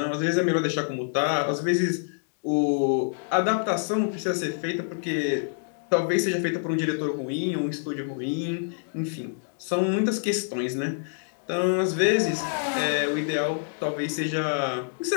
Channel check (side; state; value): right; silent; digital silence